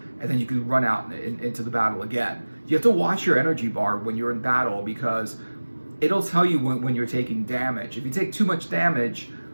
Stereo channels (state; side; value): inverted; both; correlation -1.00